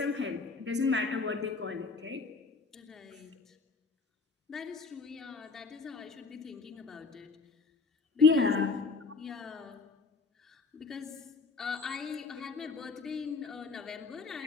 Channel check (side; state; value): right; quieter; 4.3 dB